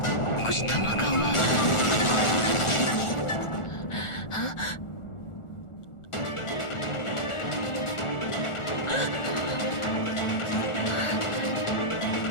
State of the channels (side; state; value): right; late; 1.4 ms